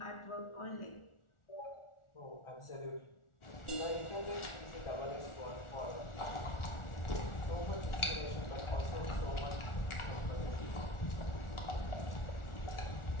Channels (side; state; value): right; late; 1.4 ms